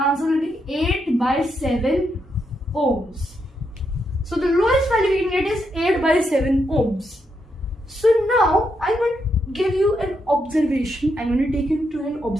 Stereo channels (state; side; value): normal; both; correlation 0.81